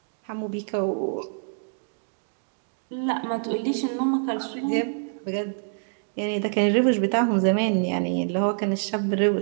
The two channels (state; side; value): silent; left; digital silence